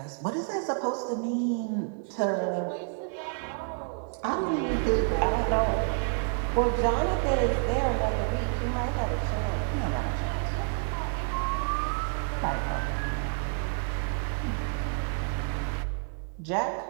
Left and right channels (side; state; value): left; silent; 56 dB below the other